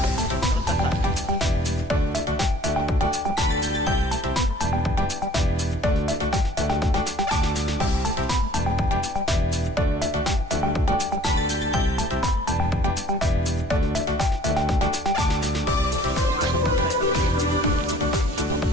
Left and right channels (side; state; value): both; normal; correlation 0.55